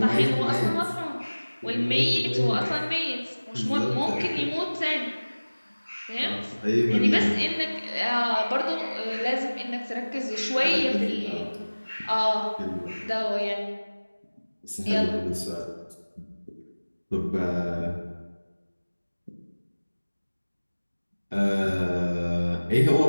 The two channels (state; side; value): inverted; both; correlation -1.00